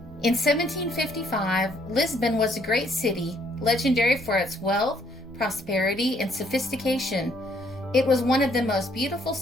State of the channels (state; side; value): normal; both; correlation 0.67